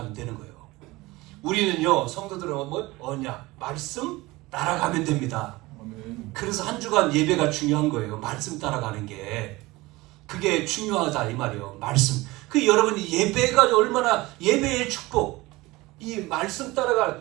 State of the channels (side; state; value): left; quieter; 20.8 dB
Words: 되는 거예요. 우리는요 성도들은 언약, 말씀 따라가면 됩니다. 그래서 한 주간 예배가 중요한 거예요. 말씀 따라가는 게 그게 중요하다 이 말이에요. 말씀. 그 여러분이 예배가 얼마나, 예배의 축복, 이 말씀